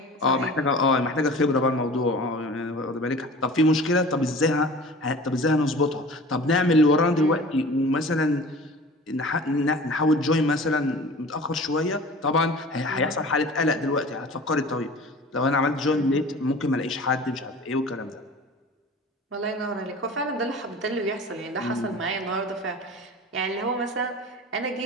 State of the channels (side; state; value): both; normal; correlation 0.40